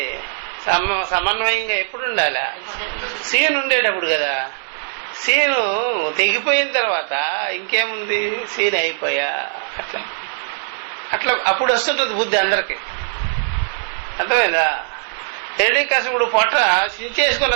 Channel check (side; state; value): left; silent; digital silence